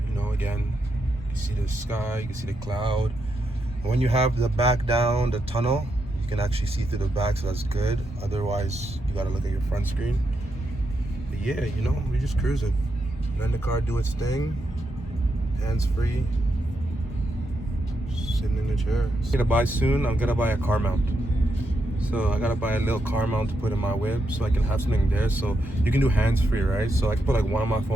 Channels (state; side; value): normal; both; correlation 0.83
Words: You know, again, you can see the sky, you can see the cloud. And when you have the back down, the tunnel, you can actually see through the back, so that's good. Otherwise, you gotta look at your front screen. But yeah, you know, we're just cruising. Letting the car do its thing. Hands free. Sitting in the chair. I'm gonna buy soon, I'm gonna buy a car mount. So I gotta buy a little car mount to put in my whip so I can have something there. So you can do hands free, right? So I can put like one of my